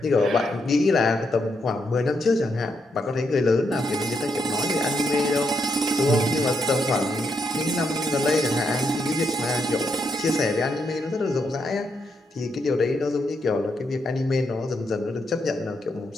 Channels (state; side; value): normal; both; correlation 0.79